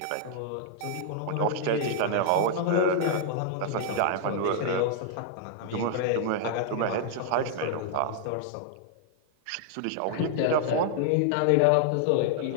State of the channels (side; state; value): both; different; correlation -0.01